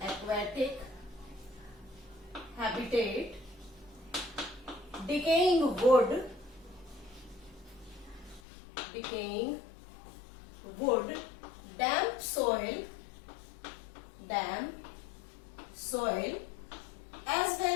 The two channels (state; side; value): drops out; right; at 8.4 s